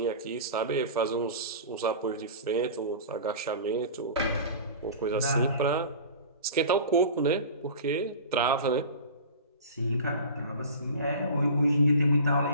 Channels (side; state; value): both; inverted; correlation -0.36